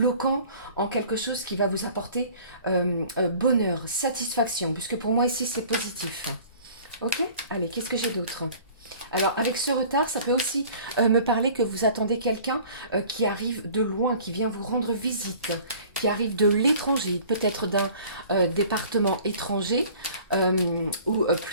en quelque chose qui va vous apporter bonheur, satisfaction, puisque pour moi ici c'est positif. Ok? Allez, qu'est-ce que j'ai d'autre? Alors, avec ce retard, ça peut aussi me parler que vous attendez quelqu'un qui arrive de loin, qui vient vous rendre visite, qui arrive de l'étranger, peut-être d'un département étranger ou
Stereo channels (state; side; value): inverted; both; correlation -0.48